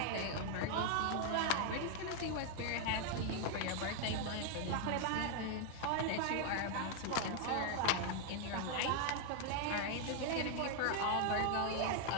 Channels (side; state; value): both; different; correlation 0.00